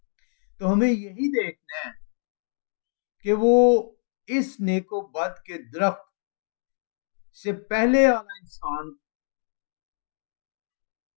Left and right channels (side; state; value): right; silent; digital silence